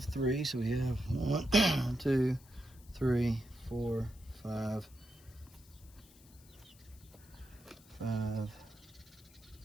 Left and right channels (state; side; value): noise; left; hiss, 25 dB below the sound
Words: 3, so we have 1, 2, 3, 4, 5,